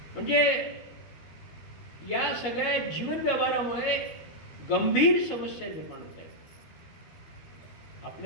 म्हणजे या सगळ्या जीवन व्यवहारामुळे गंभीर समस्या निर्माण होत आहेत.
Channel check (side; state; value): right; late; 13 ms